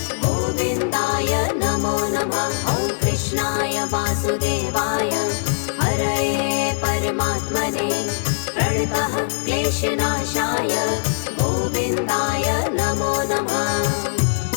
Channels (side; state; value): right; silent; digital silence